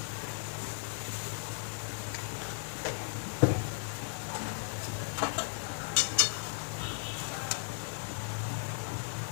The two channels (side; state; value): right; silent; 54 dB below the other